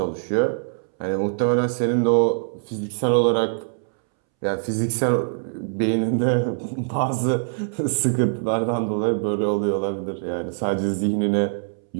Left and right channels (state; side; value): silent; left; 63 dB below the other